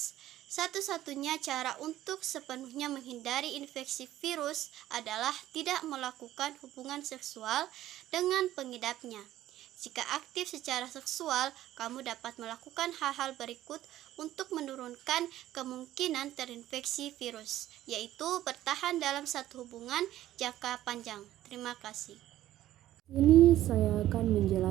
Satu-satunya cara untuk sepenuhnya menghindari infeksi virus adalah tidak melakukan hubungan seksual dengan pengidapnya. Jika aktif secara seksual, kamu dapat melakukan hal-hal berikut untuk menurunkan kemungkinan terinfeksi virus, yaitu bertahan dalam satu hubungan jangka panjang. Terima kasih. Ini saya akan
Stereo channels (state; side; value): quieter; left; 13.8 dB